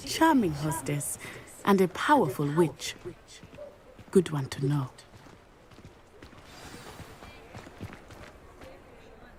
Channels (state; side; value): identical; both; correlation 1.00